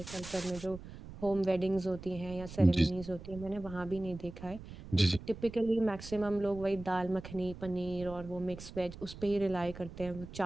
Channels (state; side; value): noise; right; rumble, 14 dB below the sound